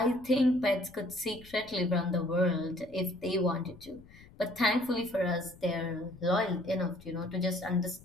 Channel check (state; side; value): noise; left; rumble, 22 dB below the sound